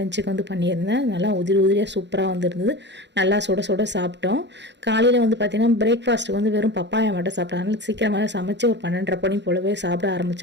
வந்து பண்ணியிருந்தேன். நல்லா உதிரியாக சூப்பராக வந்துருந்தது. நல்லா சுட சுட சாப்பிட்டோம். காலையில் வந்து பார்த்திங்கன்னா பிரேக்ஃபாஸ்ட்டுக்கு வந்து வெறும் பப்பாயா மட்டும் சாப்பிட்டோம். அதனால் சீக்கிரமாக சமைச்சு ஒரு 12:30 மணி போலவே சாப்பிட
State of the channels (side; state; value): left; late; 0.51 ms